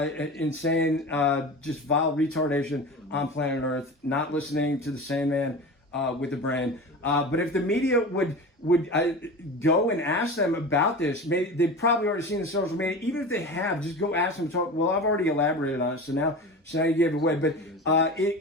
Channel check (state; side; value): normal; both; correlation 0.31